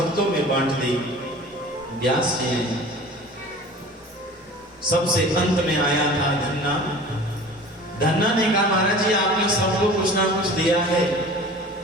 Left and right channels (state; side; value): normal; both; correlation 0.42